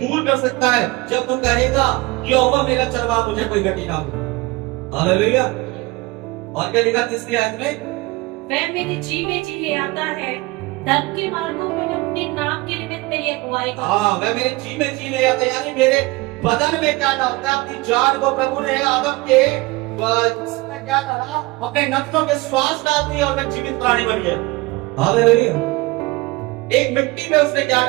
कर सकता है जब तू कहेगा यहोवा मेरा चरवाहा, मुझे कोई घटी ना हो। हालेलुया। और क्या लिखा 3री आयत में? वह मेरे जी में जी ले आता है, धर्म के मार्गों में अपने नाम के निमित्त मेरी अगुवाई करता है। हाँ, वह मेरे जी में जी ले आता है, यानी मेरे बदन में क्या डालता है? अपनी जान को प्रभु ने आदम के इसमें क्या डाला? अपने नथनों के श्वास डाल दिए और मैं जीवित प्राणी बन गया। हालेलुया। एक मिट्टी में उसने क्या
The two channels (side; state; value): left; quieter; 22.3 dB